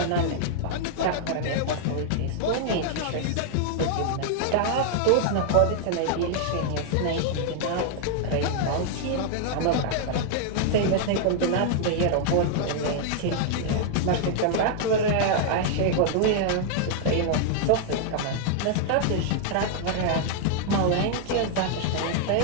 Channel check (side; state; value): both; different; correlation -0.01